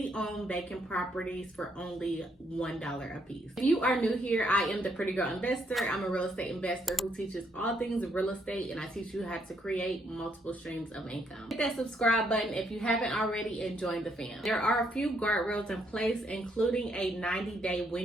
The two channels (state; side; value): normal; both; correlation 0.73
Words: vacant properties for only $1 a piece. If you are new here, I am the Pretty Girl Investor. I'm a real estate investor who teaches all things real estate, and I teach you how to create multiple streams of income. Hit that subscribe button if you haven't already and join the fam. There are a few guardrails in place, including a 90-day